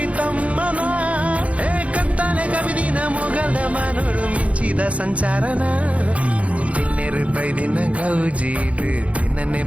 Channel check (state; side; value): late; left; 0.065 ms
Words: ತಮ್ಮನ ಕತ್ತಲೆ ಕವಿದಿನ ಮೊಗಲ್ದ ಮಾನೋಡು ಮಿಂಚಿದ ಸಂಚಾರನ ದಿನ್ನೆರು ಬೈದಿನ ಗೌಜೀಡು ದಿನನೆ